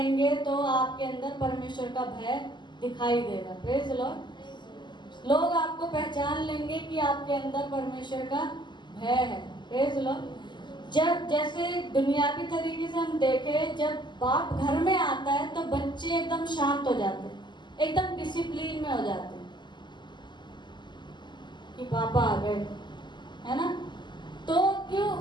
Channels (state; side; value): late; right; 0.22 ms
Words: तो आपके अंदर परमेश्वर का भय दिखाई देगा। Praise the Lord. लोग आपको पहचान लेंगे कि आपके अंदर परमेश्वर का भय है। Praise the Lord. जब जैसे दुनियावी तरीके से हम देखें, जब बाप घर में आता है तो बच्चे एकदम शांत हो जाते हैं, एकदम डिसिप्लिन में हो जाते हैं कि पापा आ गए, है ना। तो क्यों